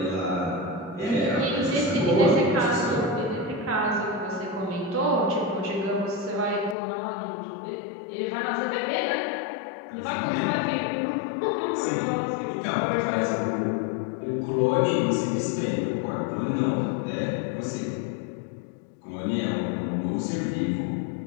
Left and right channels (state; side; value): drops out; right; at 6.8 s